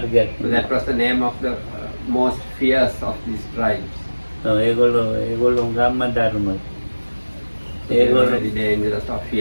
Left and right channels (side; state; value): both; inverted; correlation -1.00